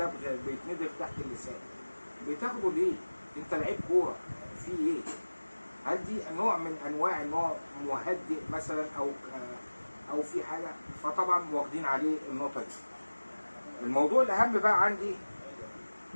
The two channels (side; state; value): both; inverted; correlation -1.00